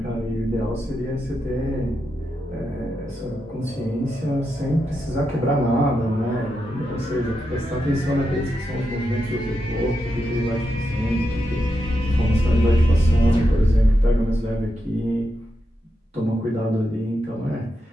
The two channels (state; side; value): normal; both; correlation 0.86